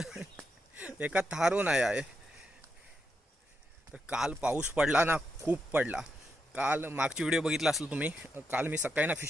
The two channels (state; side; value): normal; both; correlation 0.84